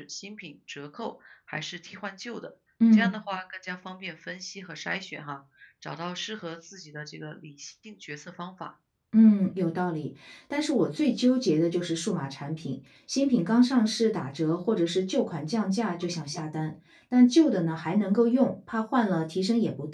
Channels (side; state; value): both; identical; correlation 1.00